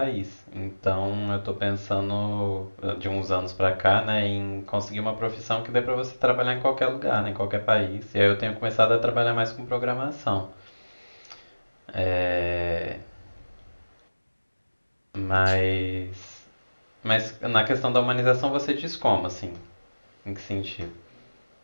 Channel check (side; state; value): both; inverted; correlation -1.00